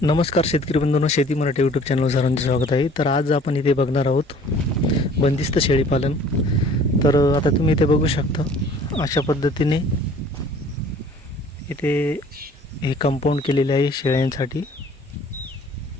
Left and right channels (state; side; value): normal; both; correlation 0.52